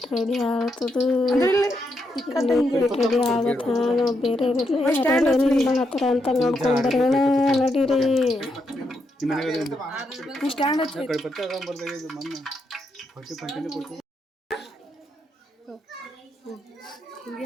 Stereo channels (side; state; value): both; normal; correlation 0.81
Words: ರೆಡಿ ಆಗ್ತದೆ, ಉಪ್ಪಿಟ್ಟು ರೆಡಿ ಆಗತ್ತ. ನಾವು ಬೇರೆ ಮಾಡತ್ತಾರ ಅಂತ ನೋಡ್ಕೊಂಡ್ಬರೋಣ ನಡೀರಿ.